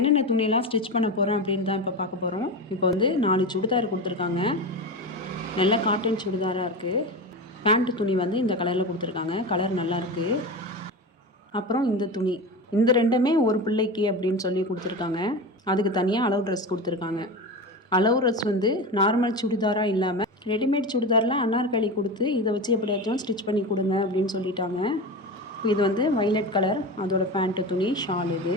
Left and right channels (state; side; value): normal; both; correlation 0.24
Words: துணியெல்லாம் ஸ்டிச் பண்ண போகிறேன் அப்படின்னு தான் இப்போ பார்க்க போகிறோம். இப்போ வந்து 4 சுடிதார் கொடுத்துருக்காங்க. நல்ல காட்டன் சுடிதாராக இருக்குது. பேண்ட்டு துணி வந்து இந்த கலரில் கொடுத்துருக்காங்க. கலர் நல்லாயிருக்கு. அப்புறம் இந்த துணி, இந்த ரெண்டுமே ஒரு பிள்ளைக்கு அப்படின்னு சொல்லி கொடுத்துருக்காங்க. அதுக்கு தனியாக அளவு ட்ரெஸ் கொடுத்துருக்காங்க. அளவு ட்ரெஸ் வந்து நார்மல் சுடிதாராக இல்லாமல் ரெடிமேட் சுடிதாரில் அன்னார்கலி கொடுத்து இதை வச்சு எப்படியாச்சும் ஸ்டிச் பண்ணி கொடுங்க அப்படின்னு சொல்லிட்டாங்க. இது வந்து வைலட் கலர், அதோட பேண்ட்டு துணி, ஷால்